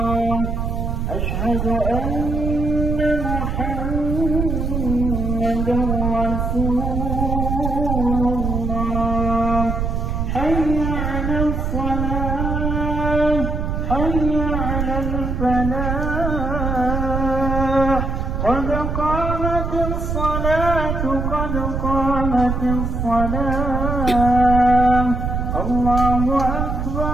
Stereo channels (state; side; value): noise; right; rumble, 1 dB below the sound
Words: الصلاة قد قامت الصلاة الله